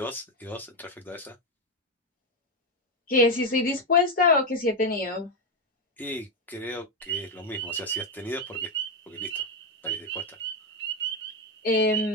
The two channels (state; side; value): normal; both; correlation 0.08